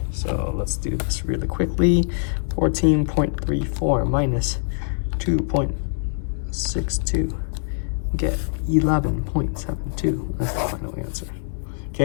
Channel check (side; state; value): right; silent; digital silence